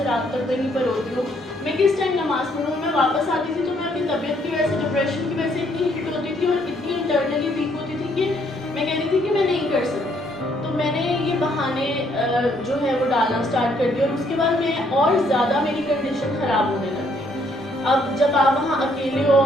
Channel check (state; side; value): normal; both; correlation 0.68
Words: رات تک کہیں پر ہوتی ہوں, میں کس ٹائم نماز پڑھوں. میں واپس آتی تھی تو میں اپنی طبیعت کی وجہ سے, ڈپریشن کی وجہ سے اتنی ہٹ ہوتی تھی اور اتنی انٹرنلی ویک ہوتی تھی کہ میں کہتی تھی کہ میں نہیں کر سکتی. تو میں نے یہ بہانے جو ہے وہ ڈالنا اسٹارٹ کر دیا, اور اس کے بعد میں اور زیادہ میری کنڈیشن خراب ہونے لگ گئی. اب جب آپ وہاں اکیلے ہو